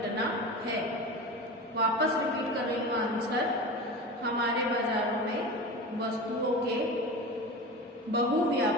है। वापस रिपीट कर रही हूँ आंसर, हमारे बाजारों में वस्तुओं के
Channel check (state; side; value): normal; both; correlation 0.29